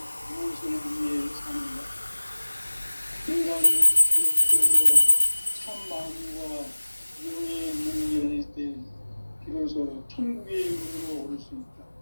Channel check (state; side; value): inverted; both; correlation -1.00